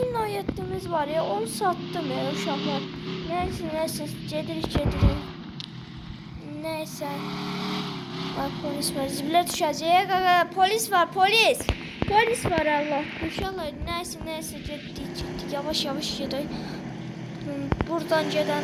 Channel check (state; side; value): identical; both; correlation 1.00